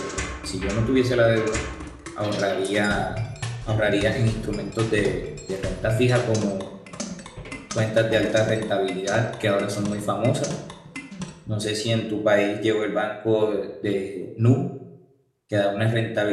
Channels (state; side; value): identical; both; correlation 1.00